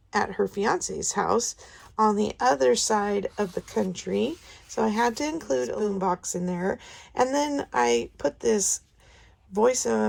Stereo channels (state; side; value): identical; both; correlation 1.00